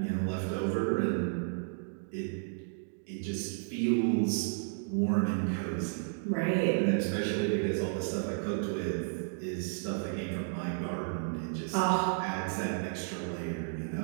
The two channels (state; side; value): silent; left; digital silence